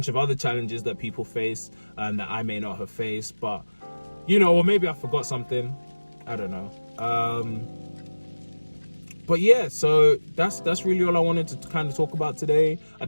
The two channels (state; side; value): inverted; both; correlation -1.00